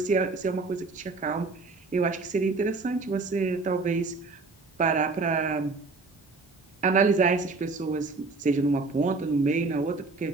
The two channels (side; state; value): left; quieter; 3.8 dB